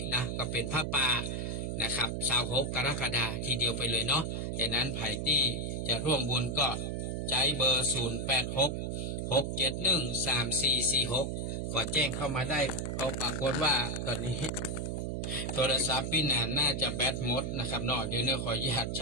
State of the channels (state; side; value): noise; right; hum, 2 dB below the sound